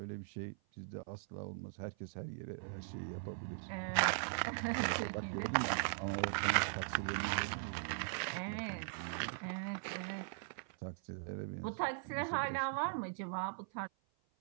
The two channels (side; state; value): left; silent; 51 dB below the other